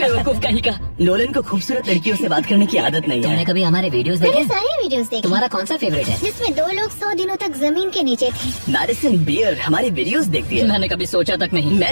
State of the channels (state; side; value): inverted; both; correlation -1.00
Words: कहीं का। नोलन को खूबसूरत लड़कियों से बात करने की आदत नहीं तुमने है। कभी हमारे वीडियोस मैंने देखे? सारे वीडियोस देखे तुम्हारा कौन सा फेवरेट है? जिसमें 2 लोग 100 दिनों तक जमीन के नीचे थे। मैडिसन बियर हमारे वीडियोस देखती है। मैंने कभी सोचा तक नहीं।